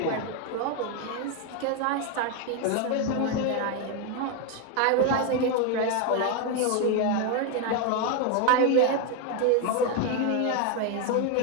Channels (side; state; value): both; different; correlation 0.01